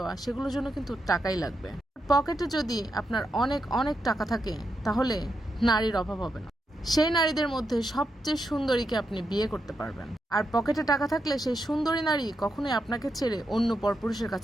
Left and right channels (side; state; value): both; normal; correlation 0.84